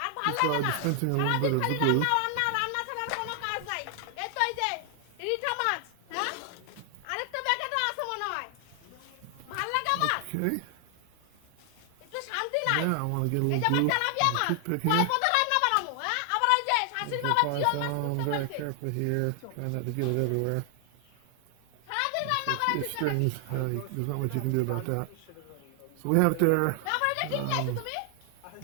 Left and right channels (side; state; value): both; different; correlation 0.00